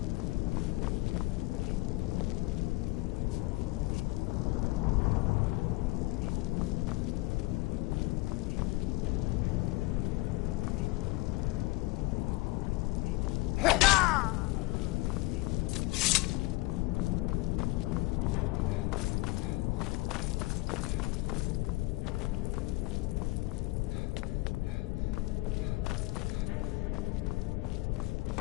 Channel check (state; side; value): quieter; right; 21.5 dB